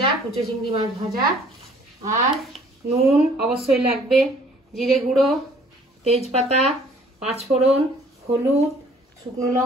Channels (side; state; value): both; normal; correlation 0.57